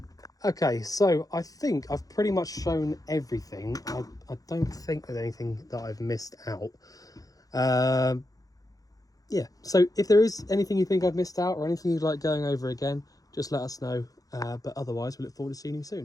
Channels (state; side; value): late; right; 0.17 ms